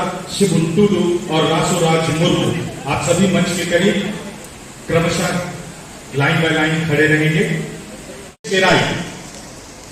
शिबुन टुडू और रासोराज मुर्मू आप सभी मंच के करीब क्रमशः लाइन बाय लाइन खड़े रहेंगे।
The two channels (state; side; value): identical; both; correlation 1.00